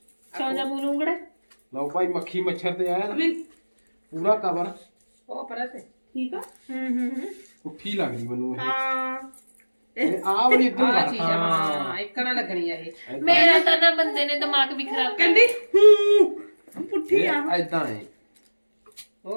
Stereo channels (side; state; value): both; inverted; correlation -1.00